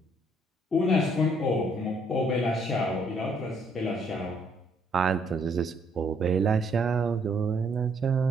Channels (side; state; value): both; normal; correlation 0.67